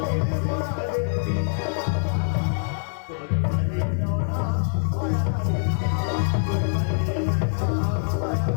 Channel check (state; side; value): silent; right; 62 dB below the other